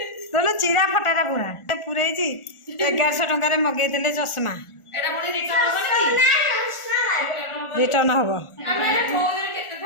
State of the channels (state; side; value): late; right; 1.4 ms